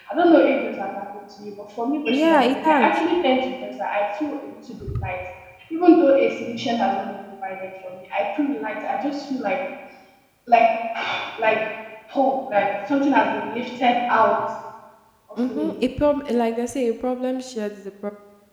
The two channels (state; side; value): identical; both; correlation 1.00